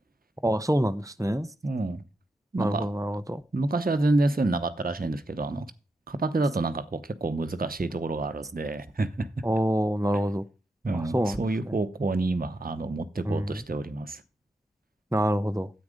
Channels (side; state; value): both; normal; correlation 0.85